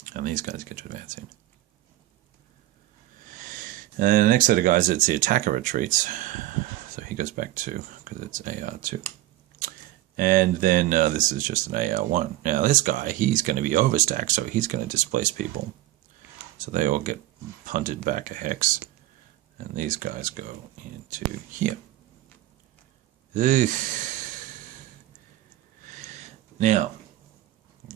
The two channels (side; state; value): left; quieter; 15.6 dB